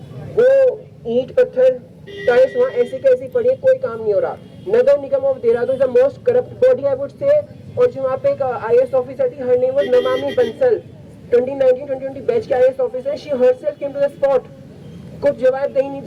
वो ईंट पत्थर टाइल्स वहाँ ऐसी कैसी पड़ी है, कोई काम नहीं हो रहा। Nagar Nigam of Dehradun is the most corrupt body I would say. और जो वहाँ पे एक IAS ऑफिसर थी, हर name was Namami Bansal, 2019-2020 batch के IAS officer, she herself came to the spot. कुछ जवाबदेही नहीं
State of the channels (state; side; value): identical; both; correlation 1.00